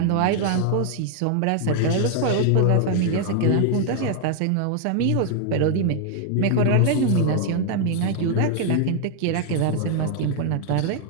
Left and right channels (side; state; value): both; different; correlation 0.00